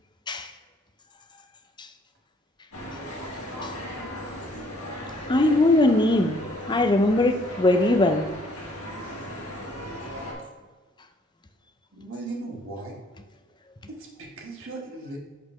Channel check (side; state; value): both; normal; correlation 0.63